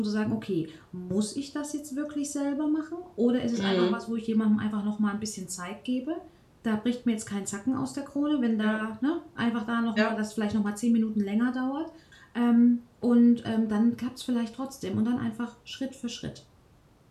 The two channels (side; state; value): both; identical; correlation 1.00